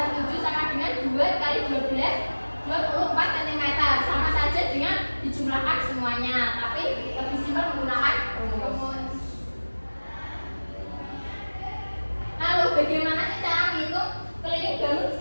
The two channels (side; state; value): both; inverted; correlation -1.00